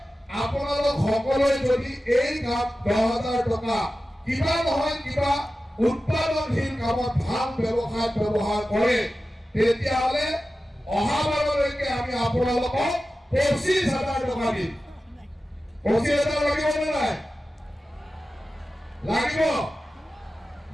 আপোনালোক সকলোৱে যদি এই কাম 10,000 টকা কিবা নহয় কিবা উৎপাদনশীল কামত ভাল ব্যৱসায়ত ব্যৱহাৰ কৰে, তেতিয়াহ'লে অহাবাৰলৈকে আমি আপোনালোকক 25,000 টকা দিম। 25,000 লাগিব নে নাই? লাগিব?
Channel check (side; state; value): both; normal; correlation 0.94